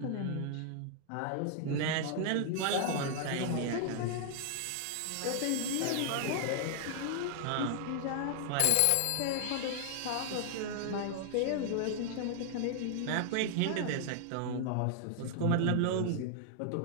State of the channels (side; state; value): both; different; correlation 0.00